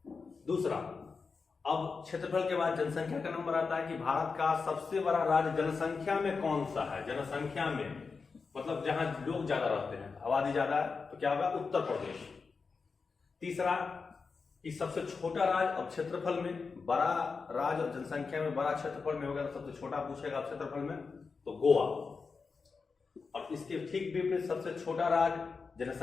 दूसरा, अब क्षेत्रफल के बाद जनसंख्या का नंबर आता है कि भारत का सबसे बड़ा राज्य जनसंख्या में कौन सा है। जनसंख्या में मतलब जहां लोग ज्यादा रहते हैं, आबादी ज्यादा है, तो क्या होगा, उत्तर प्रदेश। तीसरा, कि सबसे छोटा राज्य, अब क्षेत्रफल में बड़ा राज्य और जनसंख्या में बड़ा क्षेत्रफल में होगा, तो सबसे छोटा पूछेगा क्षेत्रफल में, तो गोवा। और इसके ठीक विपरीत सबसे छोटा राज्य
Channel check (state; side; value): quieter; right; 4.8 dB